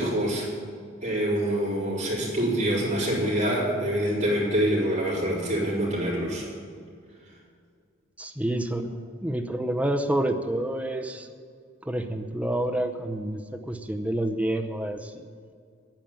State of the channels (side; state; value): both; normal; correlation 0.60